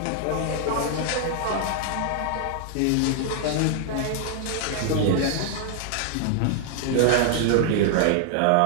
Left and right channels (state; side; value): different; both; correlation -0.01